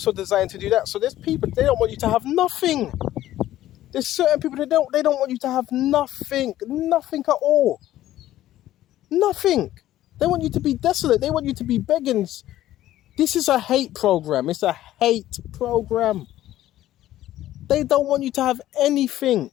designed to do that. So there's people, they don't want you to have nothing. There's certain people, they don't want you to have nothing at all. Nothing. They want you to be desolate. They want you to be begging. This is a hate program. It's a hate program. They don't want you to have anything.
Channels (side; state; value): right; quieter; 13.9 dB